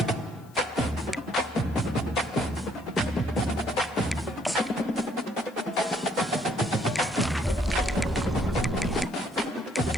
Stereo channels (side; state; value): left; noise; hiss, 28 dB below the sound